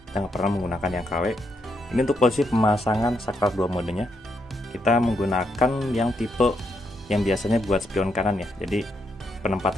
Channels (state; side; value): normal; both; correlation 0.79